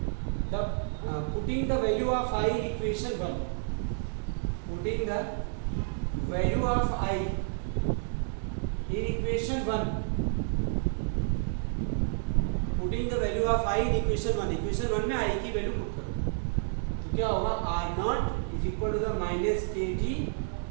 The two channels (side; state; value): left; silent; 58 dB below the other